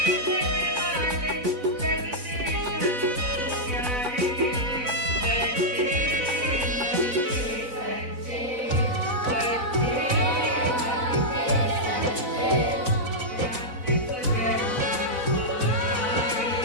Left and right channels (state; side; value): late; left; 4.0 ms